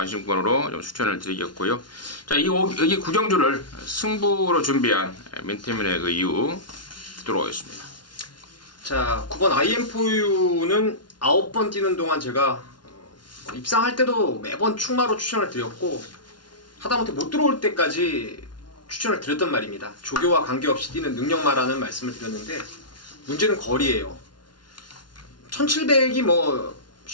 좀 추천을 드리겠고요. 자, 여기 구경주를 승부로 준비한 민태민의 그 이유 듣도록 하겠습니다. 자, 9번 IM4U는 9번 뛰는 동안 제가 입상할 때도 매번 충마로 추천을 드렸고 하다못해 못 들어올 때까지 추천을 드렸단 말입니다. 조교와 관계없이 뛰는 능력마라는 말씀을 드렸는데 문제는 거리예요. 1700이 뭐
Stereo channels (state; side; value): late; right; 0.70 ms